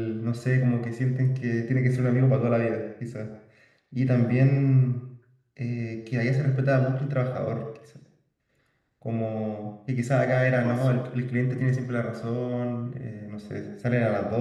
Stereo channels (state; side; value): identical; both; correlation 1.00